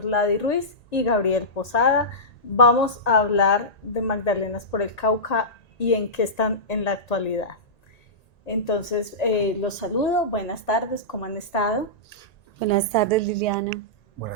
Ruiz y Gabriel Posada. Vamos a hablar de Magdalenas por el Cauca y en qué están en la actualidad. Entonces, los saludo. Buenas tardes, ¿cómo han estado? Buenas tardes, Liliana.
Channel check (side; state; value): right; late; 1.9 ms